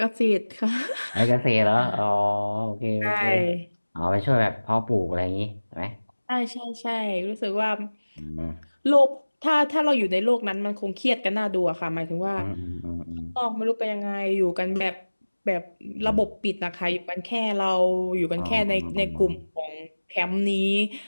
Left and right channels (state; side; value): inverted; both; correlation -1.00